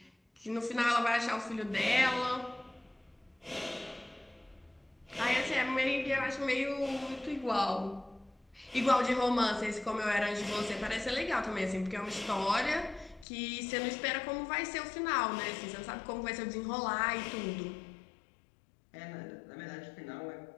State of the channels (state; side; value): drops out; right; at 13.2 s